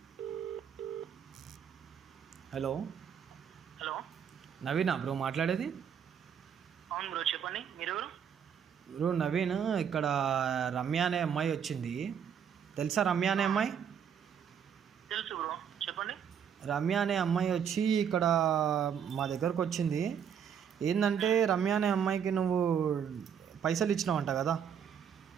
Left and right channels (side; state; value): left; quieter; 8.0 dB